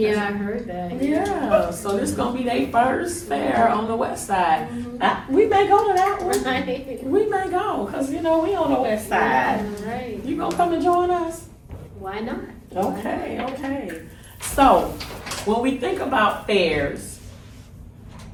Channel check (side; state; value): both; identical; correlation 1.00